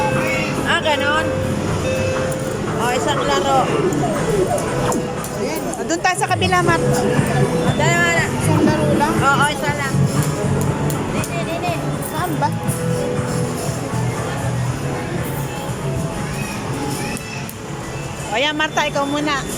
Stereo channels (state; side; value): identical; both; correlation 1.00